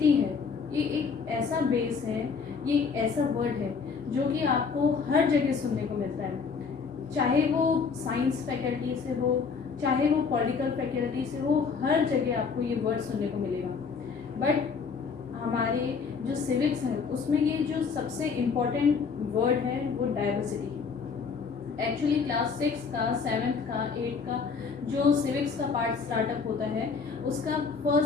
है ये एक ऐसा बेस है, ये एक ऐसा वर्ड है जो कि आपको हर जगह सुनने को मिलता है, चाहे वो साइंस फैकल्टी से हो, चाहे वो पॉलिटिकल फैकल्टी से हो, हर जगह आपको ये वर्ड सुनने को मिलेगा। बट हमारे जो सिविक्स है उसमें ये जो सबसे इम्पोर्टेंट वर्ड है वो डाइवर्सिटी है। एक्चुअली क्लास 6 का, 7th का, 8th का जो सिविक्स का पार्ट स्टार्टअप होता है उसका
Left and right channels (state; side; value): quieter; right; 5.4 dB